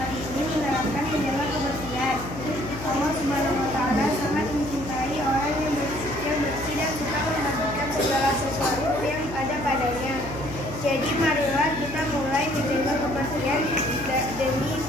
ini menerapkan menjaga kebersihan. Allah Subhanahu wa taala sangat mencintai orang yang bersih dan suka membagikan segala sesuatu yang ada padanya. Jadi marilah kita mulai menjaga kebersihan demi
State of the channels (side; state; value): left; noise; hum, 11 dB below the sound